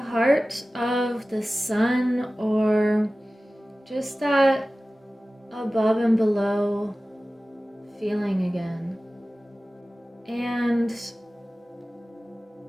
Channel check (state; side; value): normal; both; correlation 0.96